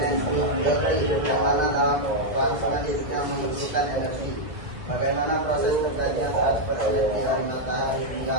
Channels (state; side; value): late; left; 2.1 ms